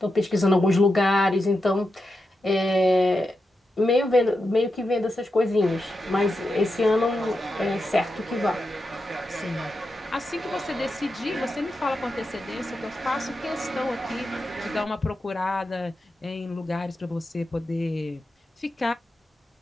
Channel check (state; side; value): normal; both; correlation 0.88